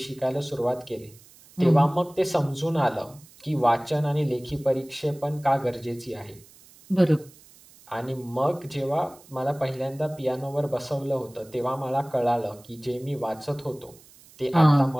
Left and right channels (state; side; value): noise; right; hiss, 24 dB below the sound